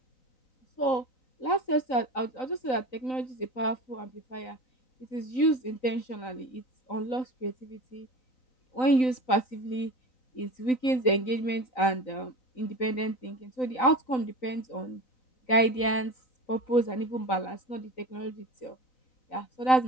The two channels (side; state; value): right; late; 3.9 ms